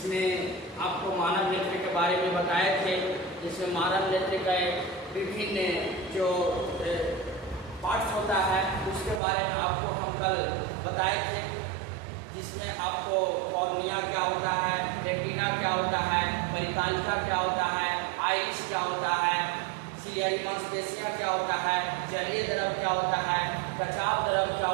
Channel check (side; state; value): left; drops out; at 9.2 s